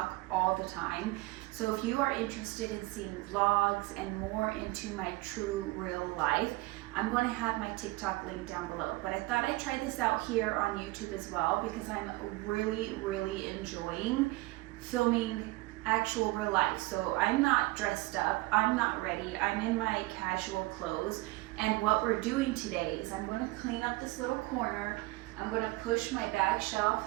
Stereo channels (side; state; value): left; quieter; 21.6 dB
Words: all the time. So if you are interested in seeing vlogs and more into my true real life, I'm going to have my TikTok link down below. But I thought I'd try this out here on YouTube as well because I'm really enjoying filming actual real life. So I'm not dressed up, I'm not ready, I'm in my casual clothes, and what we're doing today is I'm going to clean up this little corner. I'm going to push my bag shelf